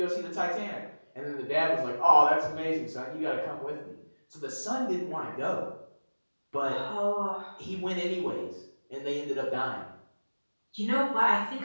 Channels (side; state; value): both; inverted; correlation -1.00